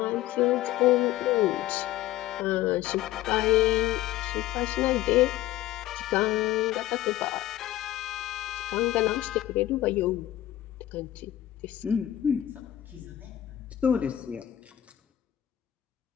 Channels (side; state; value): right; quieter; 13.7 dB